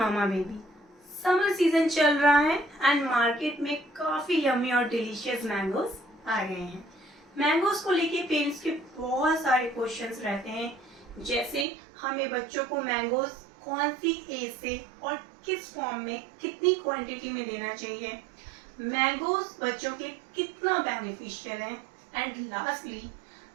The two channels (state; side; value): drops out; left; at 11.7 s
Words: baby. Summer season चल रहा है and market में काफी यम्मी और डिलीशियस मैंगोज आ गए हैं। मैंगोज को लेके पेरेंट्स के बहुत सारे क्वेश्चंस रहते हैं, जैसे हमें बच्चों को मैंगोज कौन सी एज से और किस फॉर्म में कितनी क्वांटिटी में देना चाहिए, मैंगोज बच्चों के कितना बेनिफिशियल है, एंड लास्टली